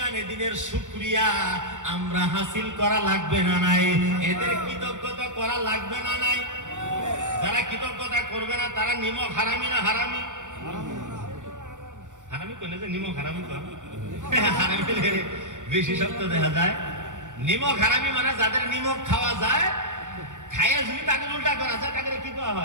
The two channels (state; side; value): late; left; 0.86 ms